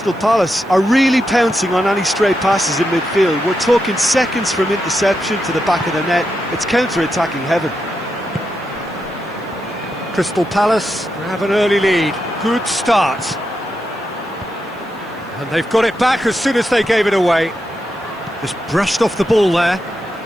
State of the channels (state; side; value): noise; right; hiss, 30 dB below the sound